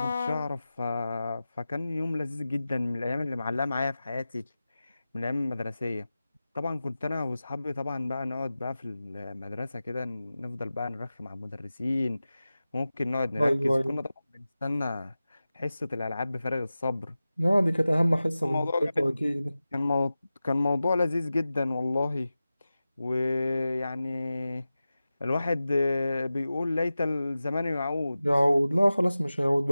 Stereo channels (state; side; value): inverted; both; correlation -0.95